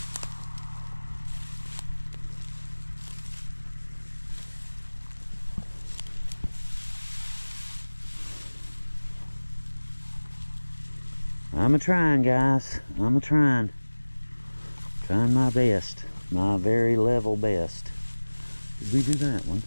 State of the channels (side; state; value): both; inverted; correlation -1.00